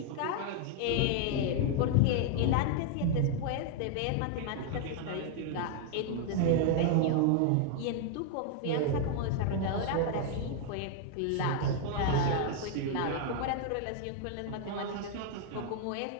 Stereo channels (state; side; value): different; both; correlation 0.00